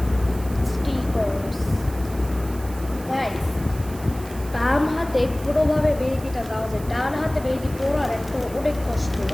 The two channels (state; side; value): noise; right; hiss, 18 dB below the sound